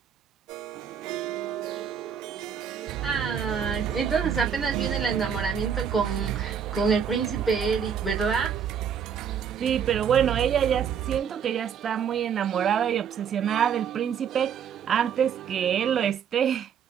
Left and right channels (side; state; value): left; quieter; 7.7 dB